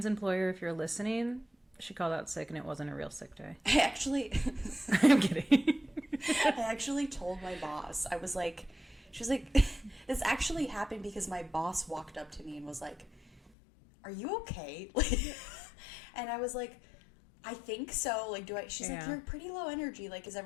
employer, if you're listening, she called out sick and it wasn't a real sick day. I actually I'm kidding. I actually told my boss. She was like, this actually happened because my boss walked up to me and was like, "Are you okay?" And I was like, "I think so. Like, she's like, "You're pretty low energy. Like, is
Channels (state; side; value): drops out; right; at 13.5 s